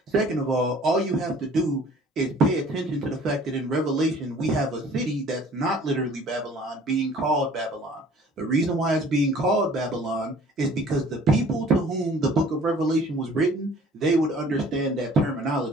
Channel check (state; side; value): normal; both; correlation 0.52